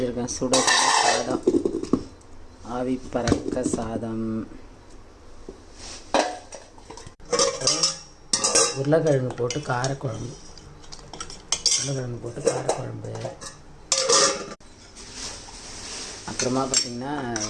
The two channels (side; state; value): both; identical; correlation 1.00